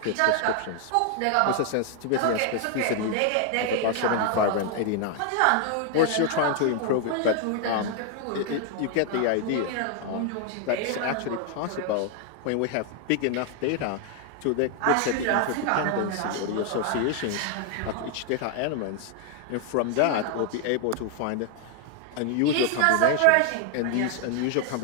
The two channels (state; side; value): different; both; correlation 0.00